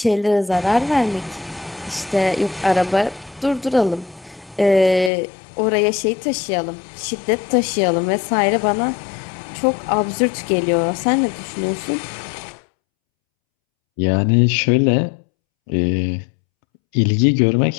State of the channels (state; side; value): drops out; right; at 5.1 s